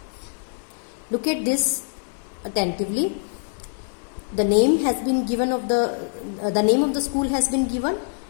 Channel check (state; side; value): silent; right; 62 dB below the other